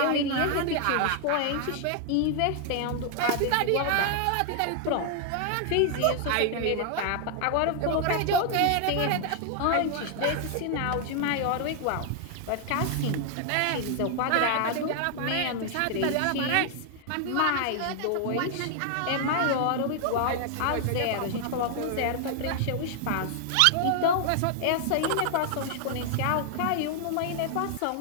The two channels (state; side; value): different; both; correlation 0.00